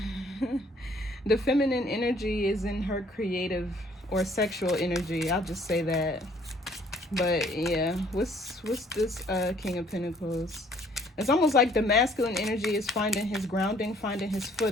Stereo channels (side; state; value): both; normal; correlation 0.60